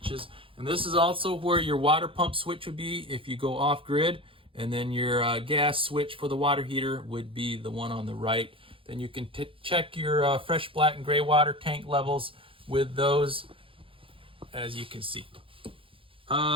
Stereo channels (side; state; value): left; late; 0.26 ms